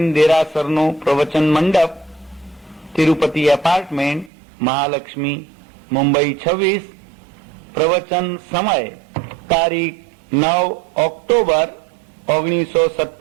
દેરાસરનો પ્રવચન મંડપ, તિરુપતિ એપાર્ટમેન્ટ, મહાલક્ષ્મી, મુંબઈ 26। પ્રવચન સમય તારીખ 9 ઓક્ટોબર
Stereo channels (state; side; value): drops out; left; at 4.3 s